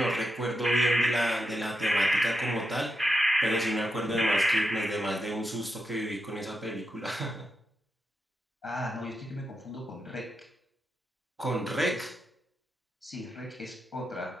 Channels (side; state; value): both; normal; correlation 0.86